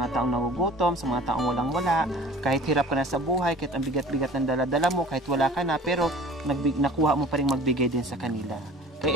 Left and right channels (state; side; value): normal; both; correlation 0.45